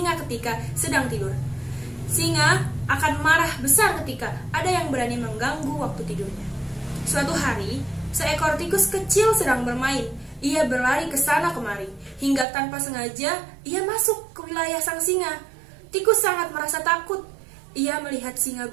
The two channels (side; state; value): left; drops out; at 12.5 s